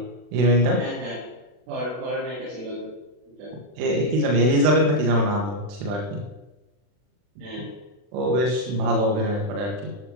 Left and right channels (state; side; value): late; left; 40 ms